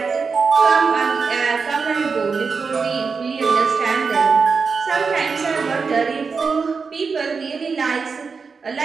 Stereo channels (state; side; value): quieter; left; 5.1 dB